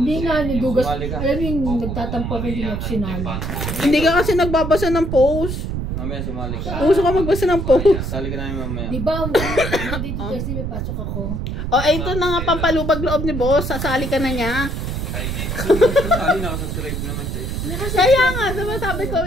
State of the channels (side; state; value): right; noise; rumble, 3 dB below the sound